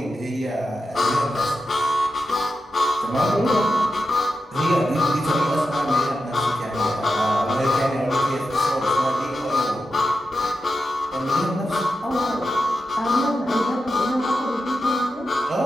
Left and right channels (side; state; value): both; normal; correlation 0.89